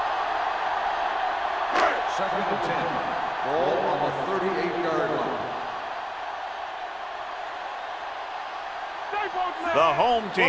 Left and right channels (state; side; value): identical; both; correlation 1.00